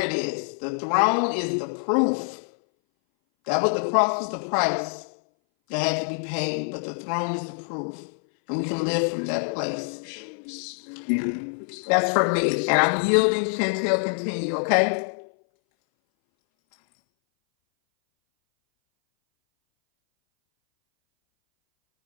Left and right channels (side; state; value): right; silent; 60 dB below the other